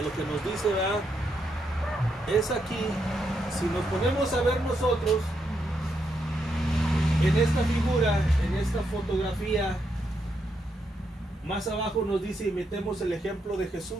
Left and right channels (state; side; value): normal; both; correlation 0.80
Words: lo que nos dice, ¿verdad? Es aquí, si nos ponemos a ver nosotros, en esta figura, en esta fotografía, más abajo nos dice, imitemos el ejemplo de